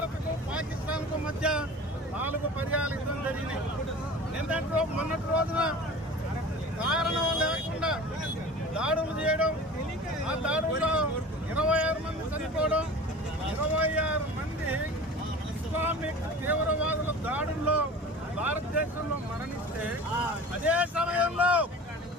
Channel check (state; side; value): normal; both; correlation 0.38